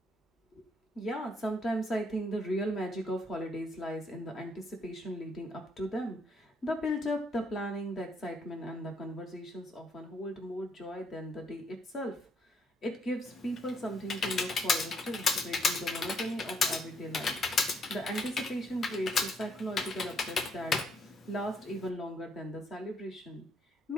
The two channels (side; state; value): both; normal; correlation 0.71